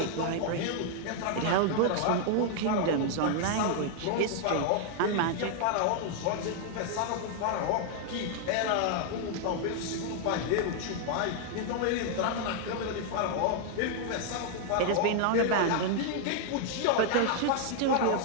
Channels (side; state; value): both; different; correlation 0.00